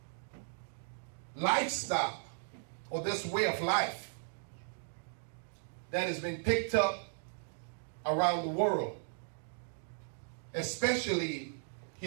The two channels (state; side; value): silent; left; digital silence